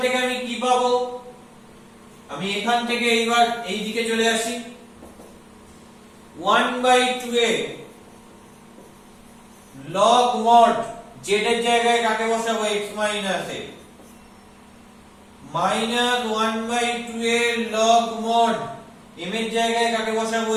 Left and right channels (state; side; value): identical; both; correlation 1.00